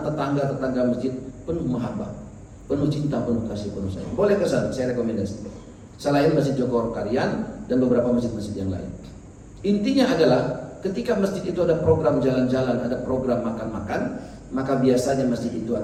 tetangga-tetangga masjid penuh mahabbah, penuh cinta, penuh kasih, penuh sayang. Boleh ke sana, saya rekomendasi. Selain Masjid Joko Karian dan beberapa masjid-masjid yang lain. Intinya adalah ketika masjid itu ada program jalan-jalan, ada program makan-makan, maka biasanya masjid itu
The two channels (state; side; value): identical; both; correlation 1.00